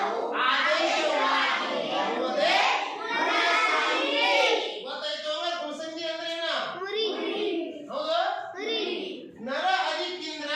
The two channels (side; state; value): both; identical; correlation 1.00